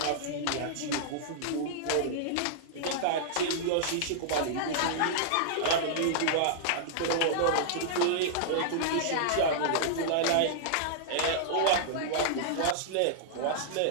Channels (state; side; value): different; both; correlation -0.01